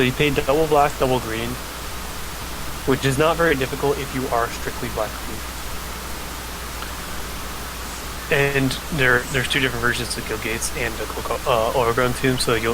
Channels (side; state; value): both; identical; correlation 1.00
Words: you pay double black, double green, which is not very difficult if you are strictly black green. And there's 2 different versions of Gilgates and Overgrown Tomb, so